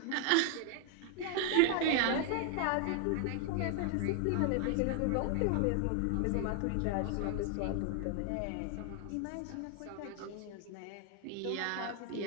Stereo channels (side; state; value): both; different; correlation 0.00